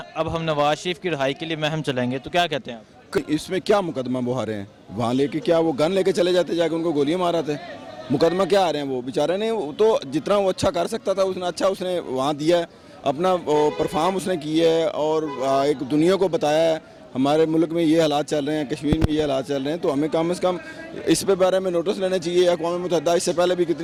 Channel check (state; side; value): identical; both; correlation 1.00